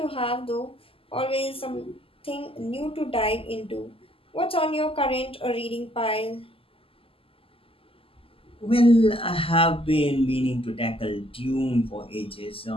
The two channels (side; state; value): right; late; 0.26 ms